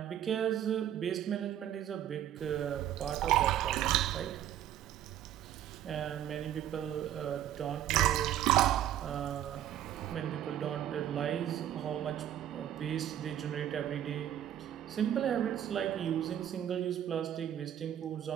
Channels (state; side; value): quieter; left; 11.2 dB